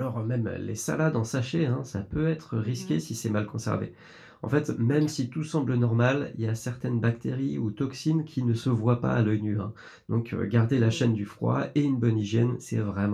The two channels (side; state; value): both; identical; correlation 1.00